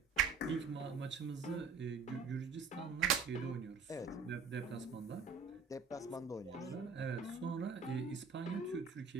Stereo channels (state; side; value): quieter; left; 4.9 dB